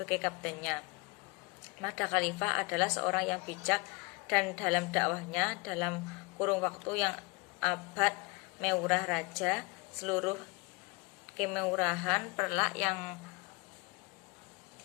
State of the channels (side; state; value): right; quieter; 28.4 dB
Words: kaptennya. Mahda Khalifah adalah seorang yang bijak dan dalam dakwahnya dalam kurung waktu yang abad mewurah raja, seluruh kemewurahan Perlak yang